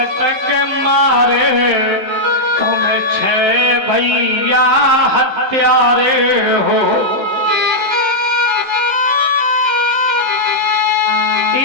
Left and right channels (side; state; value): left; late; 15 ms